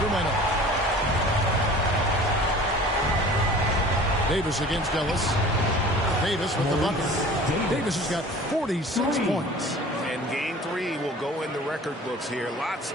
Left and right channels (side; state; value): both; normal; correlation 0.44